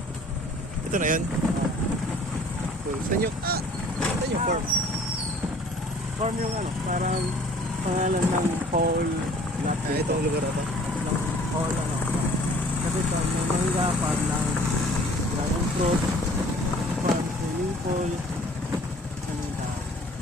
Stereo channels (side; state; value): both; normal; correlation 0.52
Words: ngayon. Cool. Saan yung farm? Farm yung ano, parang pangalan ng whole lot Itong lugar na to. ng whole ano. Kasi ito, may mangga, farm ng dragon fruit, farm swimming pool, ano yung tao.